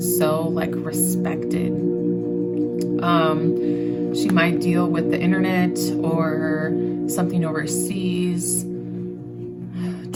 so like respected. She might deal with the internet or something overseas.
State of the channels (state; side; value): identical; both; correlation 1.00